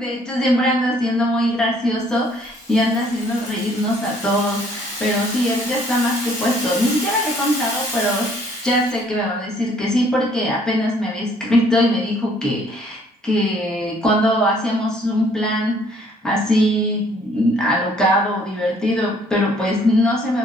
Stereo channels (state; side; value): normal; both; correlation 0.61